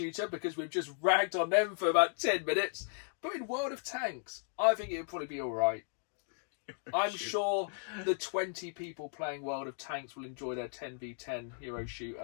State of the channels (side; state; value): right; silent; digital silence